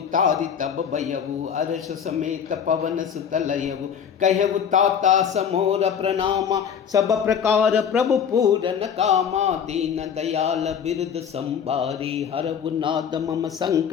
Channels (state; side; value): quieter; right; 7.7 dB